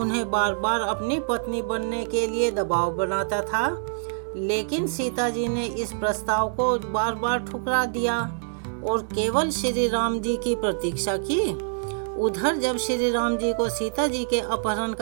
बार बार अपनी पत्नी बनने के लिए दबाव बनाता था, लेकिन सीता जी ने इस प्रस्ताव को बार बार ठुकरा दिया और केवल श्री राम जी की प्रतीक्षा की। उधर जब श्री राम जी को सीता जी के अपहरण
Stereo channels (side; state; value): left; silent; 61 dB below the other